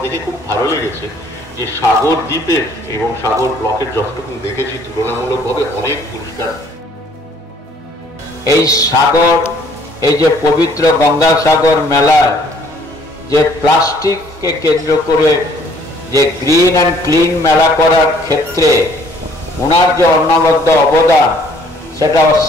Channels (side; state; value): both; normal; correlation 0.60